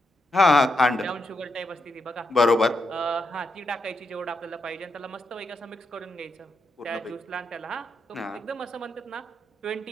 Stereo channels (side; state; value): both; normal; correlation 0.82